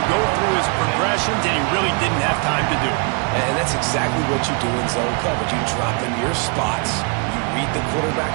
go through his progressions, and he really didn't have time to do it. And that's exactly what you do in zone coverage. You drop in your spots. Read the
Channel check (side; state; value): left; quieter; 34.8 dB